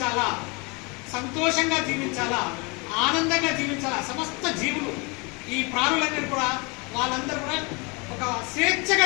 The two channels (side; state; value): right; quieter; 29.2 dB